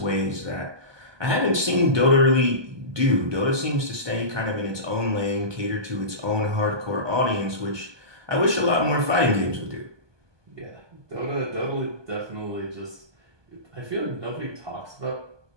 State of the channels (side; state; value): left; late; 1.2 ms